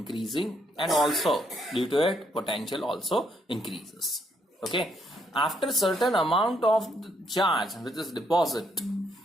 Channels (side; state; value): both; normal; correlation 0.73